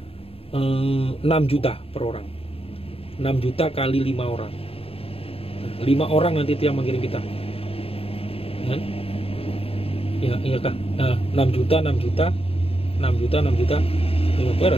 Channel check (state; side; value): late; right; 0.28 ms